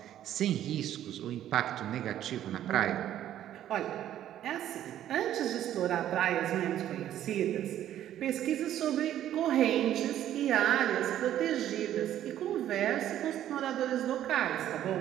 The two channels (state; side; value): quieter; left; 11.7 dB